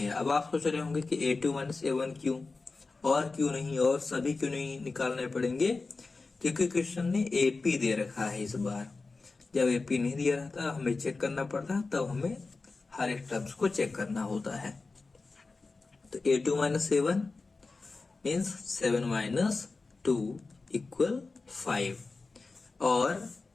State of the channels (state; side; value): quieter; right; 3.9 dB